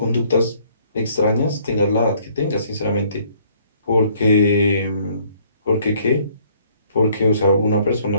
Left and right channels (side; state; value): both; inverted; correlation -0.62